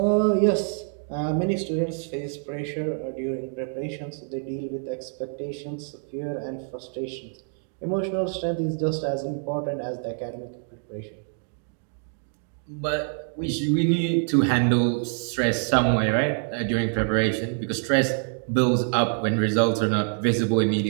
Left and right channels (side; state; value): left; silent; 55 dB below the other